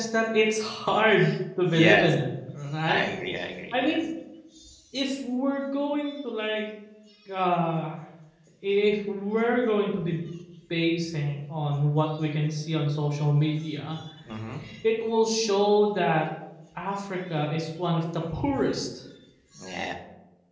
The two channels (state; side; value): identical; both; correlation 1.00